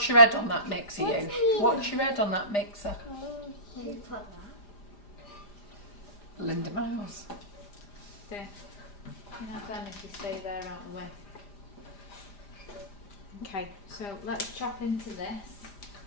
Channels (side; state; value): right; late; 5.0 ms